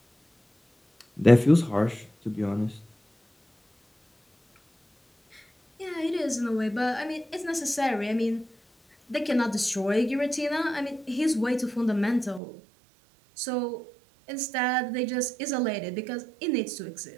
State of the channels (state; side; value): drops out; left; at 12.4 s